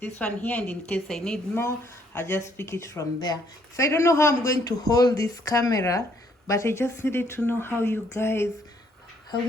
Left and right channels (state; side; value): normal; both; correlation 0.67